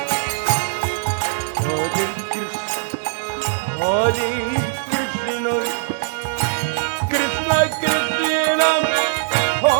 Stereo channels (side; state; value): left; silent; digital silence